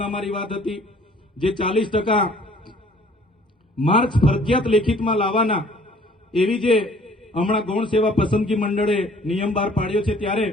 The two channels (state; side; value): normal; both; correlation 0.56